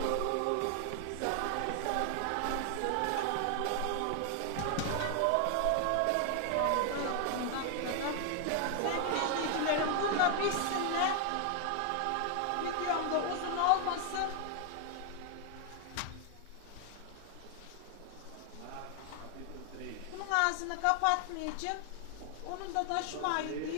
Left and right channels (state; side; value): different; both; correlation 0.00